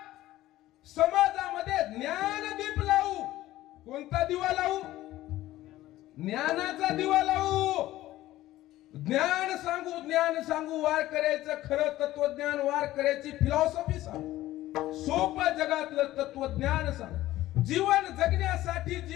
कोणता दिवा लावू? ज्ञानाचा दिवा लावू. ज्ञान सांगू वारकऱ्याचं खरं तत्वज्ञान, वारकऱ्याची फिलॉसॉफी सांगू, सोपं जगातलं तत्वज्ञान सांगू, जीवन जगण्यासाठी,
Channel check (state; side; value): quieter; right; 15.5 dB